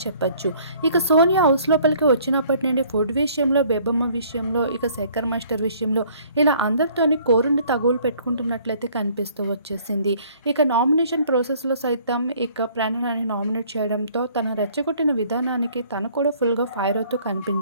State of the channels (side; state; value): both; inverted; correlation -0.57